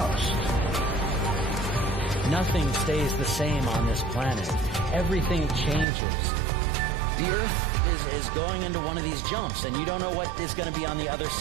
Nothing stays the same on this planet. Everything changes. The Earth is going into one of these jumps, and you don't know what is going to be on the other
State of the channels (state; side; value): drops out; left; at 5.9 s